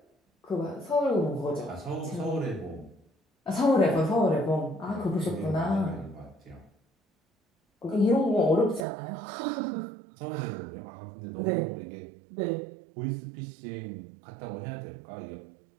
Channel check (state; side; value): drops out; left; at 8.8 s